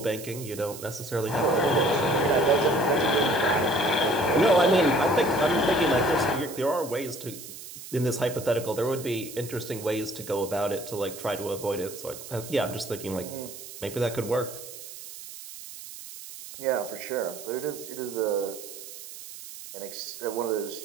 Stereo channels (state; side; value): noise; right; hiss, 13 dB below the sound